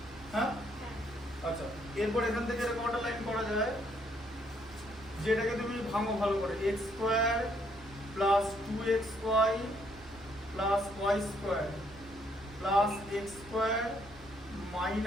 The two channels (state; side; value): normal; both; correlation 0.70